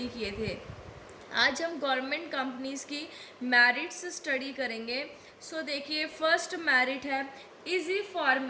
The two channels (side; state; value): both; identical; correlation 1.00